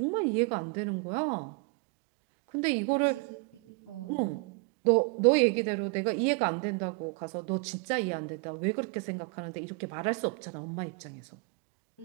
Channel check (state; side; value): quieter; left; 31.1 dB